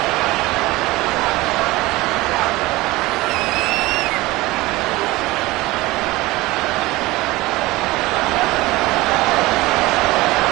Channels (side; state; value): left; quieter; 20.0 dB